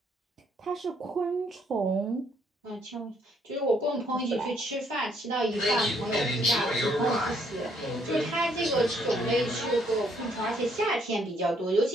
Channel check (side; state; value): both; normal; correlation 0.68